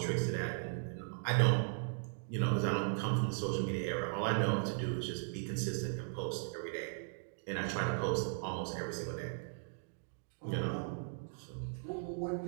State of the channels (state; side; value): silent; left; digital silence